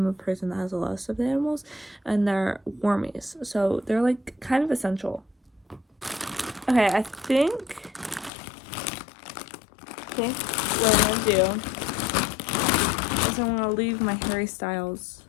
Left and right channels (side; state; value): right; drops out; at 8.3 s